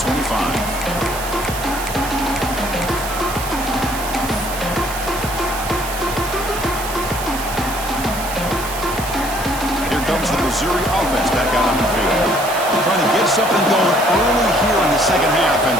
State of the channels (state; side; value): noise; right; hiss, 10 dB below the sound